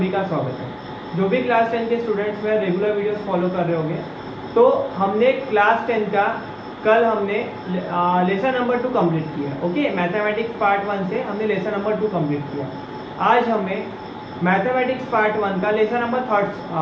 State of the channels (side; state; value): both; identical; correlation 1.00